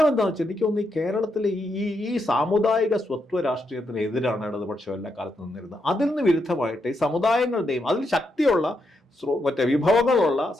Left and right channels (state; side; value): normal; both; correlation 0.81